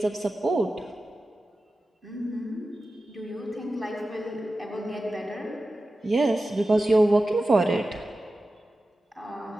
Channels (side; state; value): both; normal; correlation 0.94